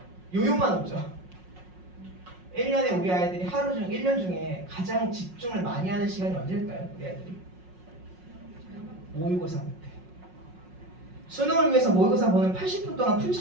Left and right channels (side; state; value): left; late; 5.5 ms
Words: 요요만 없죠. 1년에 우리 아이들이 1년 중에 가장 집중을 많이 하는 시간이 언제일까요? 우리 아이들이? 모의고사 때. 수능을 위해서 모의고사 보는 80분 동안 풀